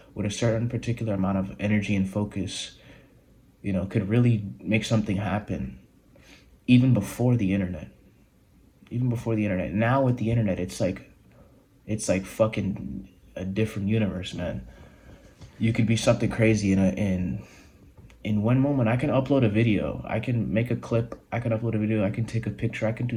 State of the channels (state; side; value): identical; both; correlation 1.00